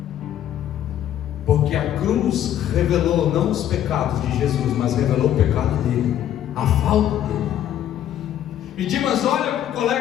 porque a cruz revelou não os pecados de Jesus, mas revelou o pecado dele, a falta dele. E Dimas olha para o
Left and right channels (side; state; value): right; quieter; 11.1 dB